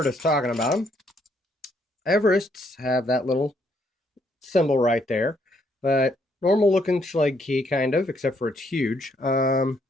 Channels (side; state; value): both; normal; correlation 0.71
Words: us talking about them, Everests have that little symbol right there, but normal looking Schlage key, kind of, except for it's huge. Let's